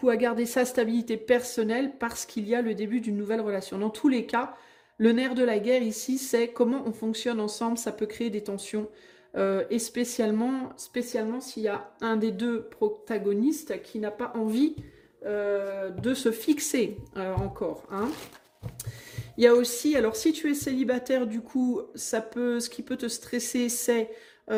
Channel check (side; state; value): both; identical; correlation 1.00